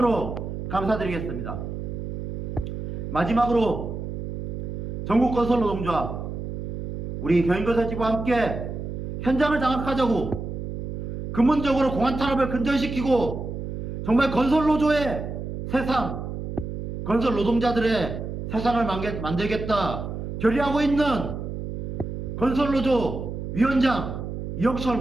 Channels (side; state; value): right; noise; hum, 6 dB below the sound